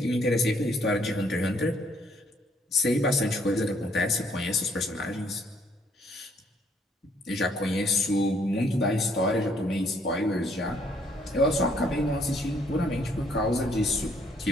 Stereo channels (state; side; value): normal; both; correlation 0.66